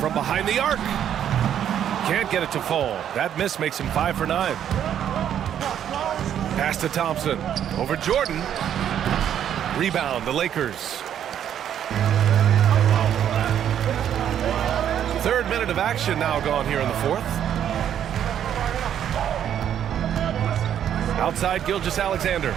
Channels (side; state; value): left; quieter; 9.8 dB